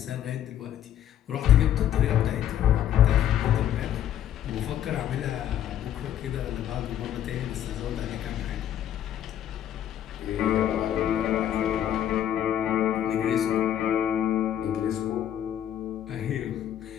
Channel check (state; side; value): quieter; right; 10.9 dB